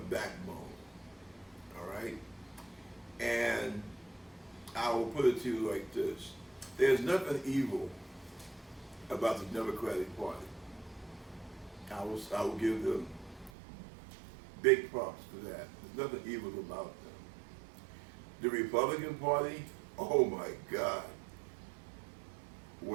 backbone. All right? And I will put it to you like this. There's nothing evil about the Democratic Party. I will give them big props for that. There's nothing evil about them. The Republican Party, oh my God.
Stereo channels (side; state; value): left; drops out; at 13.5 s